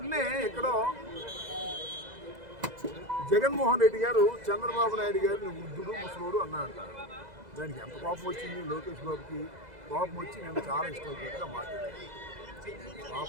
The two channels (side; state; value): left; late; 2.0 ms